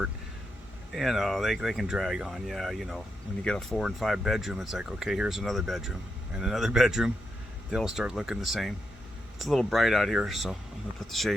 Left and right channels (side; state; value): both; normal; correlation 0.83